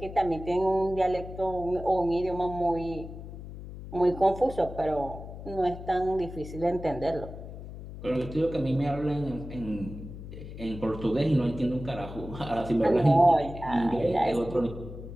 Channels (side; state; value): left; noise; hum, 12 dB below the sound